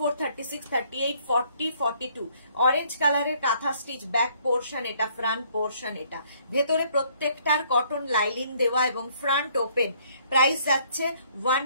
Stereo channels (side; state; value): both; inverted; correlation -0.64